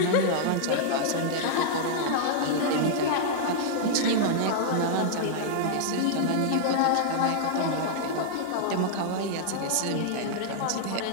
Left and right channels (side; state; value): both; different; correlation -0.01